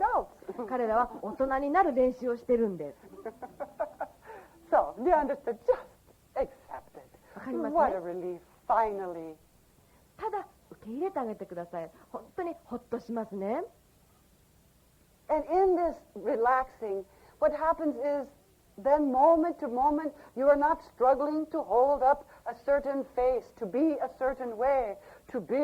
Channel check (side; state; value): both; identical; correlation 1.00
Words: 彼らは大人になる練習をしてるんです。So, do you understand? Just accept it. わかりますね。What a relief, finally. ただ受け入れてあげてください。本当にほっとしますね。And in this relaxing, what happens is then moment to moment, you are not struggling to hold up a certain face, to be a certain way, to be